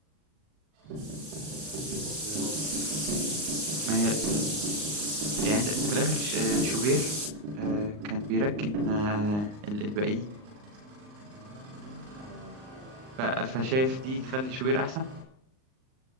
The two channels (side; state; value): left; late; 39 ms